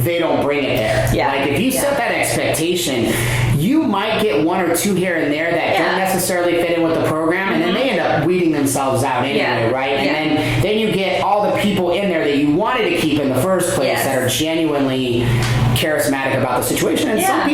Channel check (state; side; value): identical; both; correlation 1.00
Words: they don't bring it there. Yeah. Like if you set that expectation, you might get one or two here and there that don't necessarily fit in with the program, and then they end up weeding themselves out anyway, right? And then you get all the people in there that you wanted to keep in the first place that are genuinely charismatic about the situation. And some